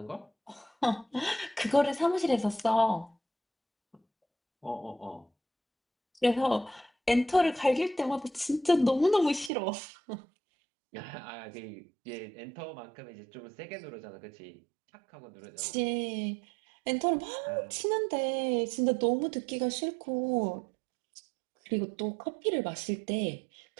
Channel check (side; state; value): left; drops out; at 9.5 s